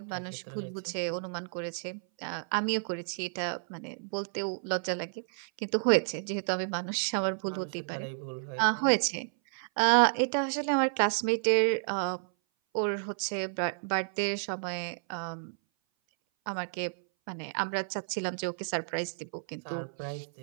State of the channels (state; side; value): silent; left; 57 dB below the other